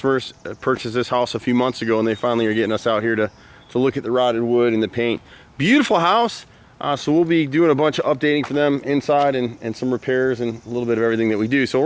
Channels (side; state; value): both; identical; correlation 1.00